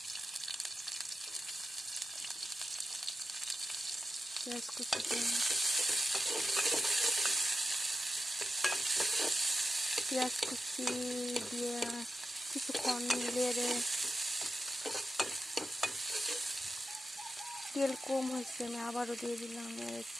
পেঁয়াজ কুচি দিয়ে কিছুক্ষণ নেড়ে, তেল কম হয়েছে, আমি আবারও দিয়ে দিলাম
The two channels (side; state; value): both; normal; correlation 0.91